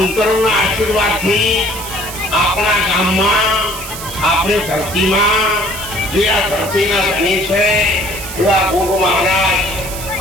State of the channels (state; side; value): noise; right; hiss, 10 dB below the sound